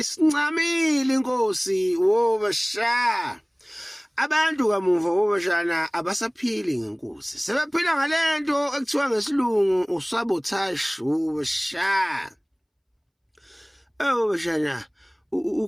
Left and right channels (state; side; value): identical; both; correlation 1.00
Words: inkosi wobashana. Abantu kamuva wobashana abasaphili ngenkosi. Sebephila ngalento ekuthiwa ngesilungu usabotage wobashana. Wobashana